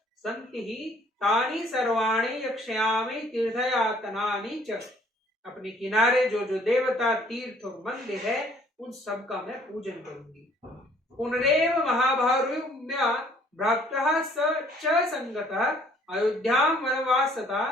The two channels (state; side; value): normal; both; correlation 0.59